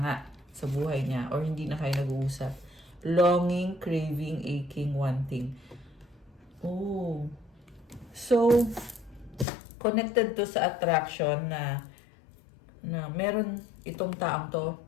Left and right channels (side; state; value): right; drops out; at 9.5 s